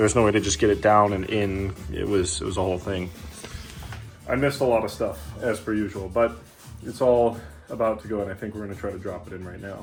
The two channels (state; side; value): identical; both; correlation 1.00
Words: no way to just get it down and in. It was a whole thing. I missed a lot of stuff as per usual, but it's all about to go, and I think we're gonna try to drop it in right